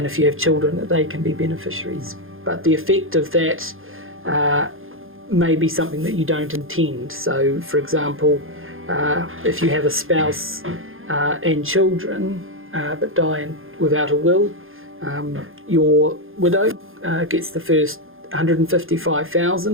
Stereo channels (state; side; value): late; left; 0.60 ms